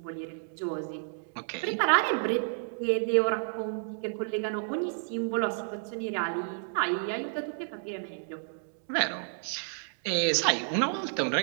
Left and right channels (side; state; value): left; silent; digital silence